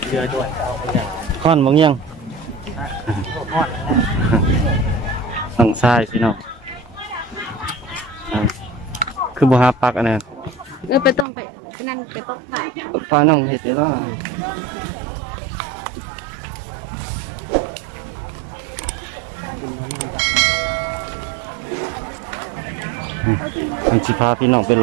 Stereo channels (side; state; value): left; drops out; at 11.2 s